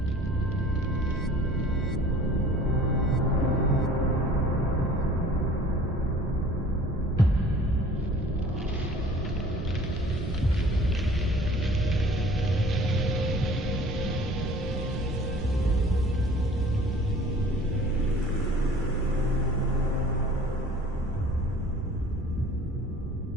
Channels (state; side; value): normal; both; correlation 0.49